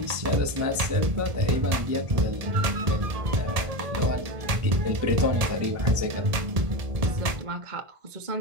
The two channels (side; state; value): left; late; 1.7 ms